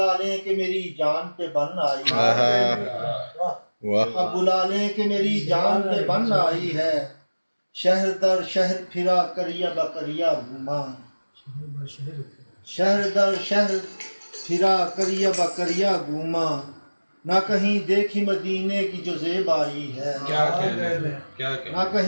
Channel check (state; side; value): inverted; both; correlation -1.00